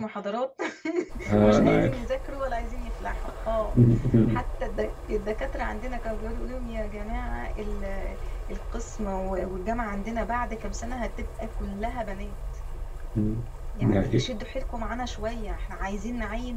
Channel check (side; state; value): both; identical; correlation 1.00